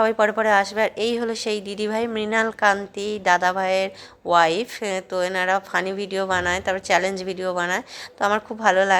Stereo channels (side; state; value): both; identical; correlation 1.00